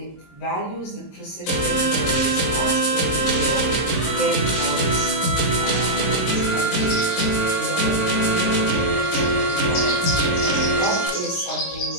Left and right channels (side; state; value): right; late; 26 ms